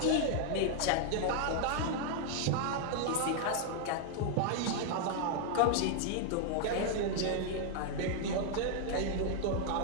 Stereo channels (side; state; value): both; different; correlation 0.00